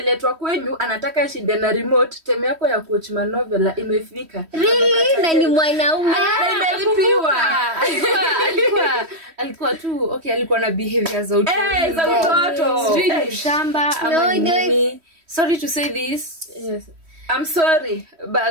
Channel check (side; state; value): left; late; 3.1 ms